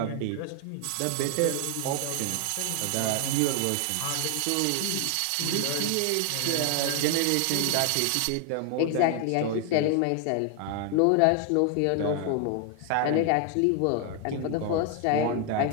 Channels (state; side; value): different; both; correlation 0.00